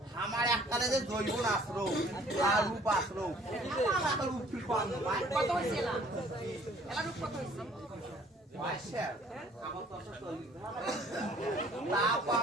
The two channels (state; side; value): normal; both; correlation 0.57